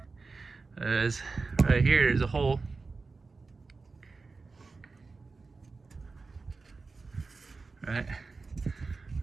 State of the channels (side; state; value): left; quieter; 4.1 dB